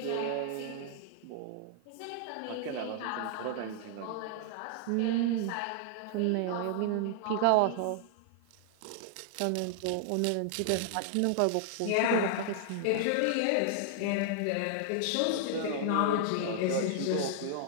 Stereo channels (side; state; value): both; different; correlation -0.01